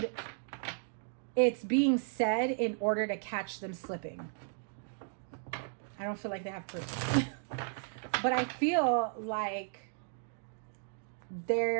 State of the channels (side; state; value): left; silent; digital silence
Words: it's being said in order to catch them slipping. I don't feel like they have proof. But I feel like